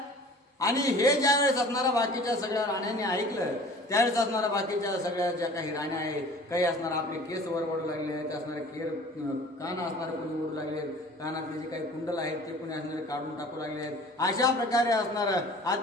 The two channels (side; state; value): both; normal; correlation 0.46